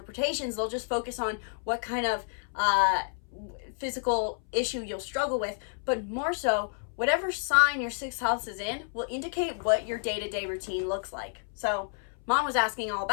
they'll just focus on what kind of physical issue you'll struggle with, but more so, whatever sign your sixth house is in will indicate what your day-to-day routine looks like. So Mom was asking all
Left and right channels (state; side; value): silent; right; 58 dB below the other